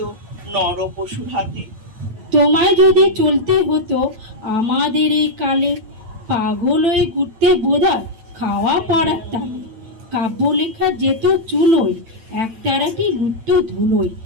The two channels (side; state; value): left; late; 8.9 ms